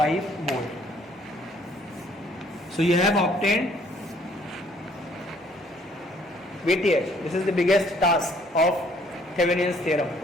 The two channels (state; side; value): normal; both; correlation 0.62